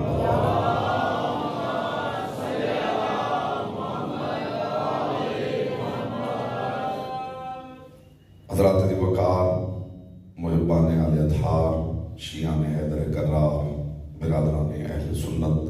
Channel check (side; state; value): both; identical; correlation 1.00